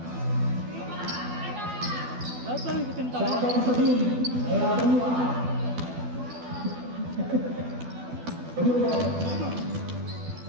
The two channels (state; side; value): late; left; 12 ms